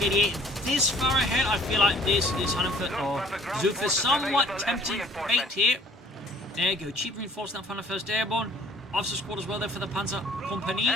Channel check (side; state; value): both; normal; correlation 0.55